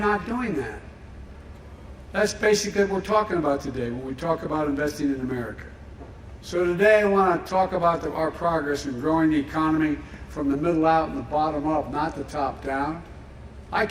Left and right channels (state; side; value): identical; both; correlation 1.00